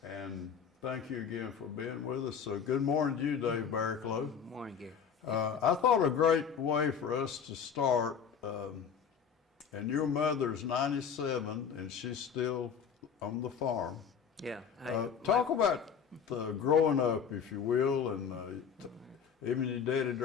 and thank you again for being with us. So good morning to you, Dave Barricklow. Good morning, Gary. I thought a great way for us to start, and your mother's 97 and she's still on the farm. Yeah. Talk about growing up, if you will, and even your daddy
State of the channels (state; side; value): quieter; right; 7.1 dB